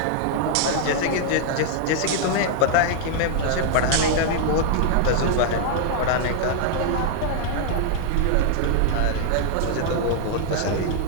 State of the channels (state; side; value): different; both; correlation 0.00